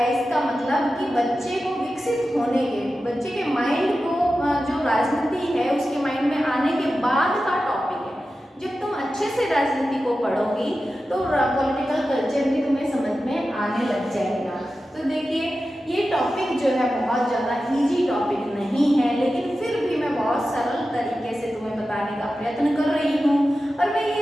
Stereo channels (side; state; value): both; normal; correlation 0.93